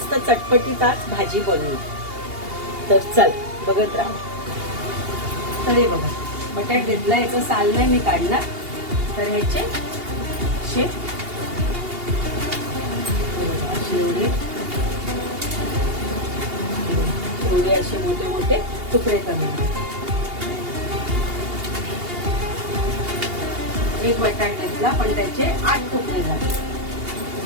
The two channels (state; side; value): late; left; 2.8 ms